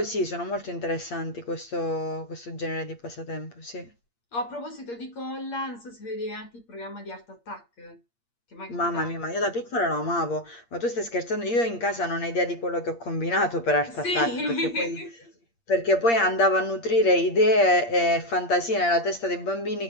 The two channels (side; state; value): right; late; 8.6 ms